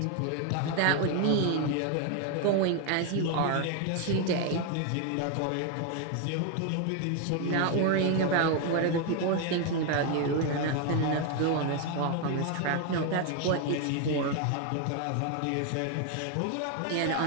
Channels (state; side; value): different; both; correlation 0.01